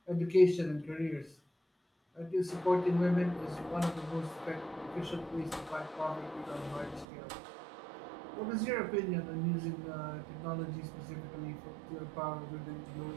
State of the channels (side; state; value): left; drops out; at 7.1 s